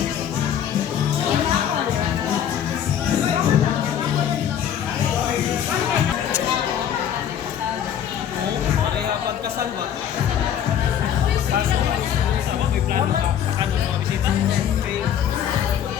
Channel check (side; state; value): right; quieter; 9.4 dB